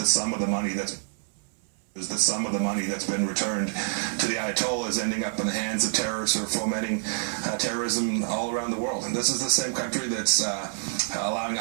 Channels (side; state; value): left; silent; 58 dB below the other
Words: some of the money that's been returned to the Ayatollah is ending up in the hands of terrorists who are fomenting terrorism all around the world. And this is the same country that's allowing